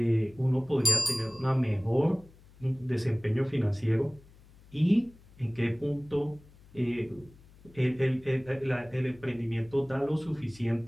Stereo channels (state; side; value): noise; left; hum, 25 dB below the sound